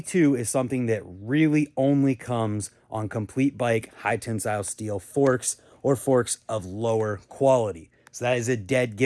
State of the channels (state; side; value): identical; both; correlation 1.00